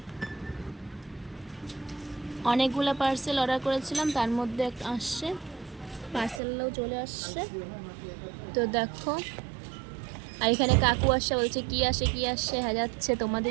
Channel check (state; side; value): drops out; left; at 6.4 s